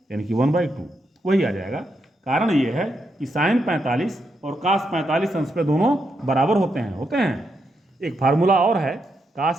यानी कि 1/2 वही आ जाएगा। कारण ये है कि साइन 45 और cos 45 अंश पे दोनों बराबर होते हैं। एक फार्मूला और है,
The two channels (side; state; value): both; normal; correlation 0.82